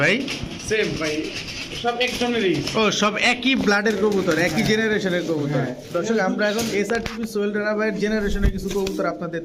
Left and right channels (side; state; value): both; identical; correlation 1.00